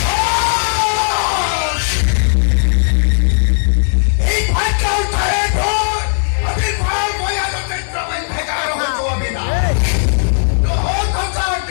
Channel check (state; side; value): silent; right; digital silence